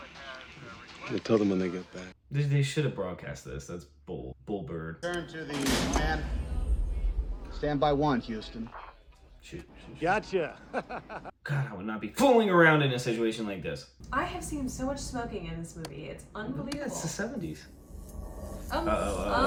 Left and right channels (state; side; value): identical; both; correlation 1.00